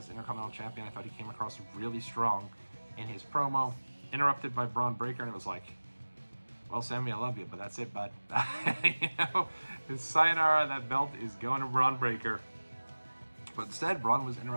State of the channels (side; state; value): both; inverted; correlation -1.00